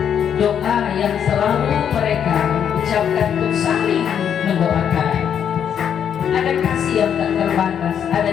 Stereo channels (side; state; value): right; quieter; 8.5 dB